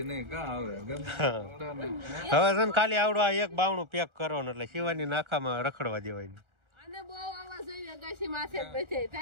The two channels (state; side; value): late; left; 1.4 ms